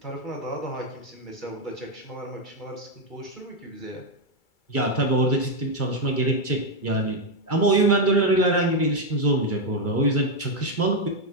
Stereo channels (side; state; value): right; late; 2.3 ms